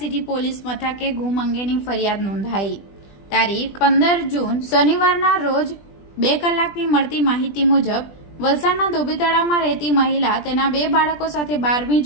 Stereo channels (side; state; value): right; late; 20 ms